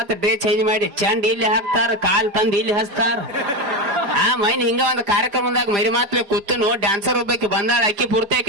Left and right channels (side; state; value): left; late; 5.0 ms